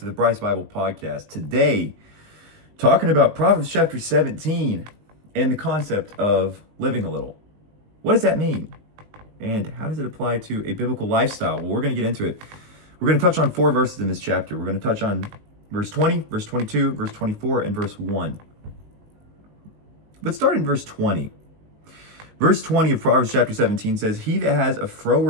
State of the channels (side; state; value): left; late; 19 ms